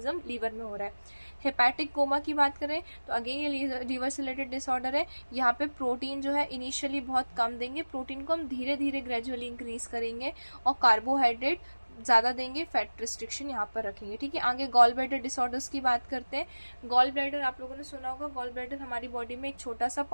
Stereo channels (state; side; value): inverted; both; correlation -1.00